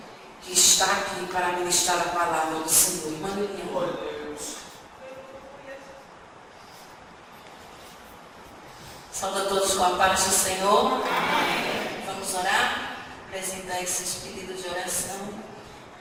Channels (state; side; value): identical; both; correlation 1.00